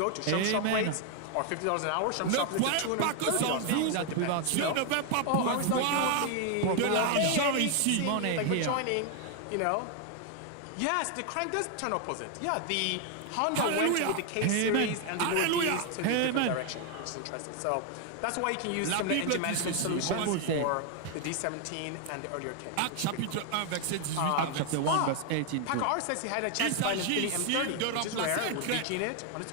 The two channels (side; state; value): both; different; correlation 0.01